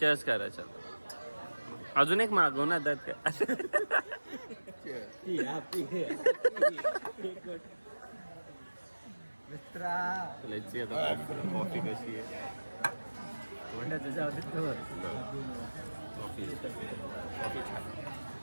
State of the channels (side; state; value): both; inverted; correlation -1.00